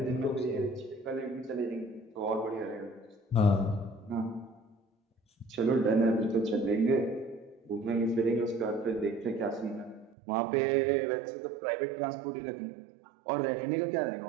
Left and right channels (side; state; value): left; drops out; at 10.2 s